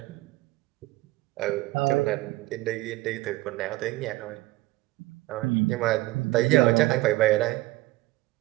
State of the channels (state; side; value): quieter; left; 19.2 dB